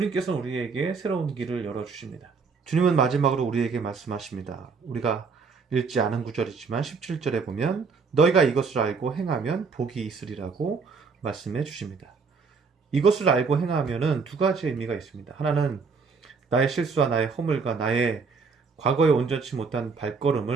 우리에게 새로운 길을 열어주십니다. 주님은 마지막으로 우리에게 말씀하십니다. 우리가 읽지 않은 구절이지만 17절에 보면 너희가 이것을 알고 행하면 복이 있으리라고 말씀해 주십니다. 이것을 알고 행하면은 두 가지 의미가 있습니다. 하나는 나의 실수와 나의 허물과 나의 과거에 온전치 못한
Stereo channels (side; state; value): left; quieter; 5.0 dB